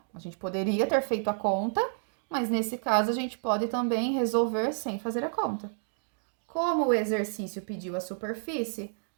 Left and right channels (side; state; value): left; silent; digital silence